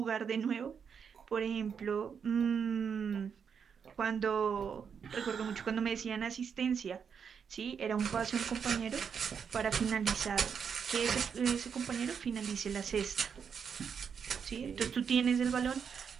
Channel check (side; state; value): left; quieter; 6.8 dB